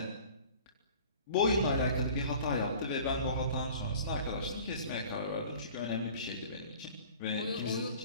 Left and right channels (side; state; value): both; inverted; correlation -0.45